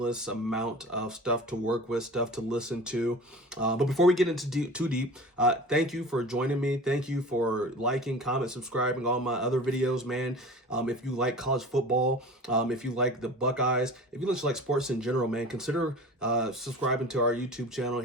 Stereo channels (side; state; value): both; normal; correlation 0.38